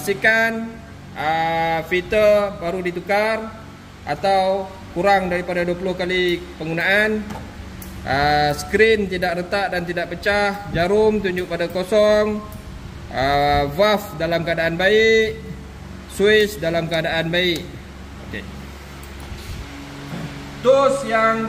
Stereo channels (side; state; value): both; identical; correlation 1.00